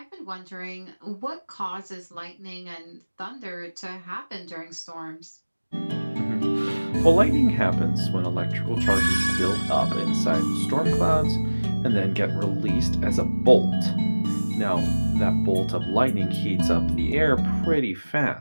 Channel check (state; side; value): inverted; both; correlation -1.00